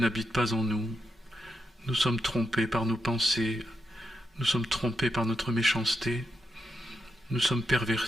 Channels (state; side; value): normal; both; correlation 0.84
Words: pas en nous. Nous sommes trompés par nos pensées. Nous sommes trompés par notre méchanceté. Nous sommes